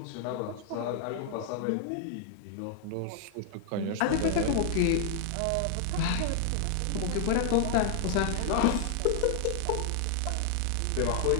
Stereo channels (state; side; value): different; both; correlation 0.00